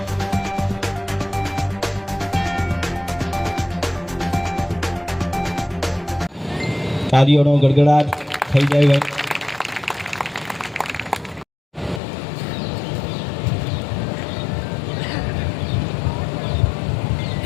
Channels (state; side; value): drops out; right; at 12.0 s